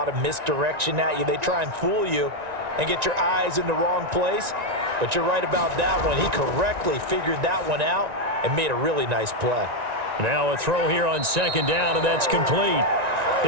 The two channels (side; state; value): left; late; 1.9 ms